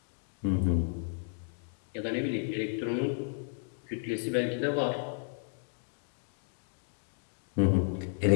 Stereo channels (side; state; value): right; silent; digital silence